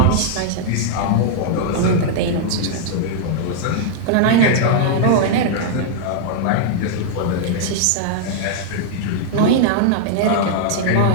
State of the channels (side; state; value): both; different; correlation -0.01